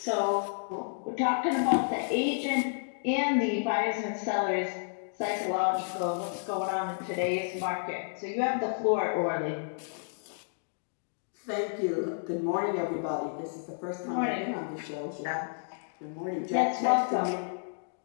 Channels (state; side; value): silent; right; digital silence